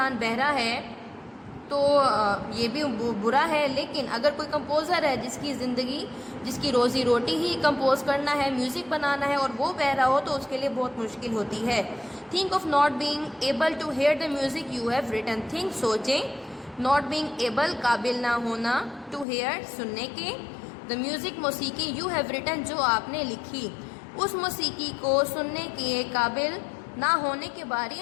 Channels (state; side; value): drops out; right; at 19.2 s